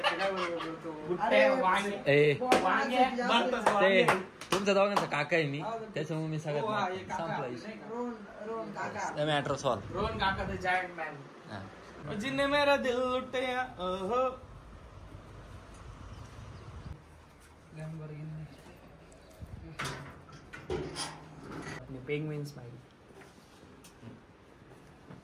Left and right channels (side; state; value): both; identical; correlation 1.00